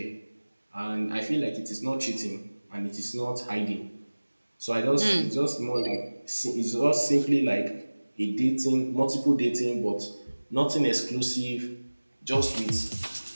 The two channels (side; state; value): both; inverted; correlation -1.00